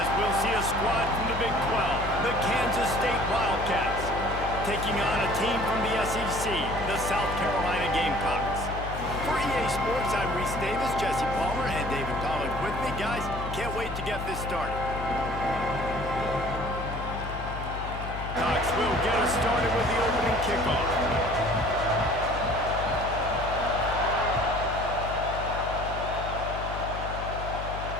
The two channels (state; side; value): noise; left; hum, 7 dB below the sound